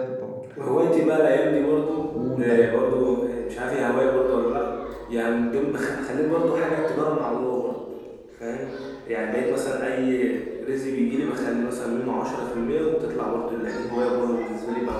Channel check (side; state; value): both; identical; correlation 1.00